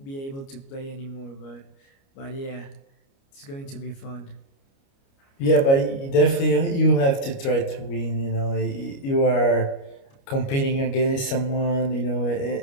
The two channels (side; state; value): right; late; 29 ms